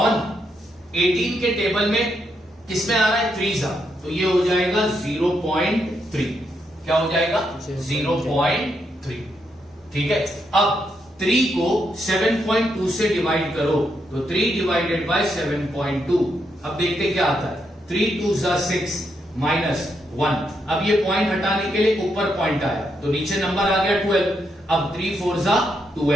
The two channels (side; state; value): both; normal; correlation 0.80